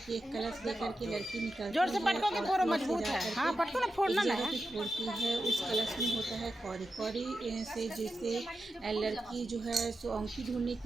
एक कलश लेकर के लड़की जोर निकलती से है पटको के और फोड़ो, फिर से मजबूत जा है। हाँ, करके पटको ना, एक फोड़ना ना जगह है। पे फोड़ती है। उस कलश में होता है कौड़ी। कौड़ी से जिससे लड़की जो है सो औंठी ढूंढने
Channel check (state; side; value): normal; both; correlation 0.90